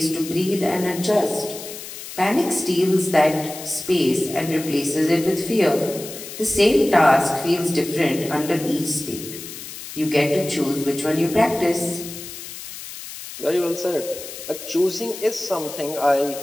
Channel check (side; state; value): left; noise; hiss, 11 dB below the sound